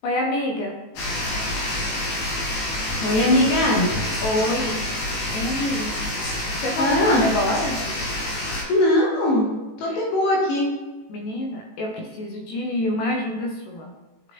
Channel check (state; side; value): late; right; 18 ms